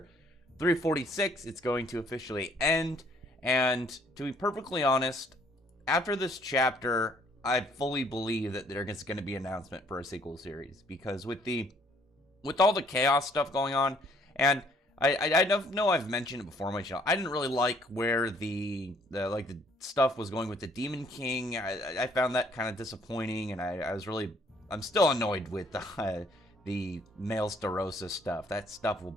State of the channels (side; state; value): both; normal; correlation 0.62